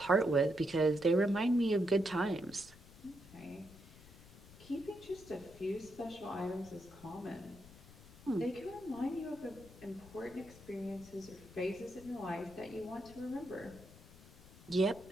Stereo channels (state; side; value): noise; left; rumble, 20 dB below the sound